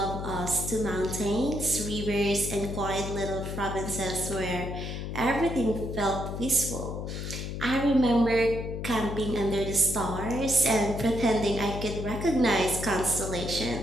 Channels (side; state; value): left; noise; hum, 5 dB below the sound